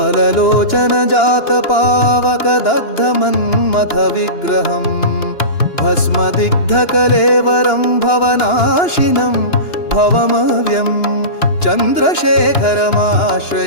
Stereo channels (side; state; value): right; late; 2.9 ms